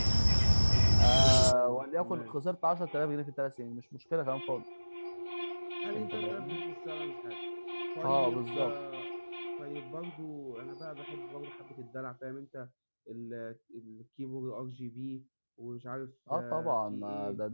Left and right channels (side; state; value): both; inverted; correlation -1.00